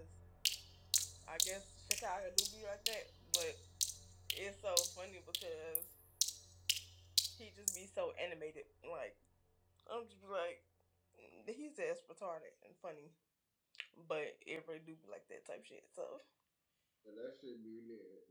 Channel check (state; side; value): identical; both; correlation 1.00